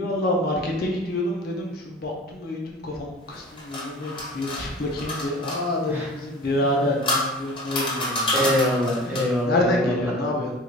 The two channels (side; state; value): both; normal; correlation 0.39